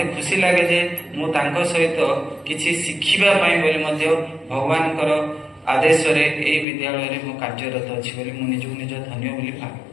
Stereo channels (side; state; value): right; drops out; at 6.7 s